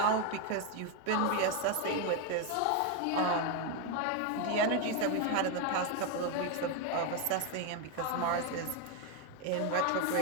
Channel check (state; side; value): different; both; correlation 0.02